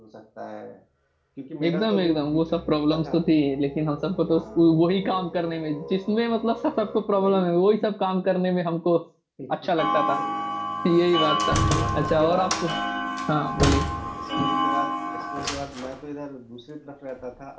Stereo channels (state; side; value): identical; both; correlation 1.00